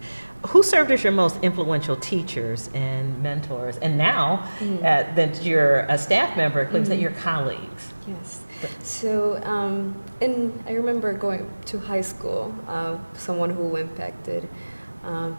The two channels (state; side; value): inverted; both; correlation -1.00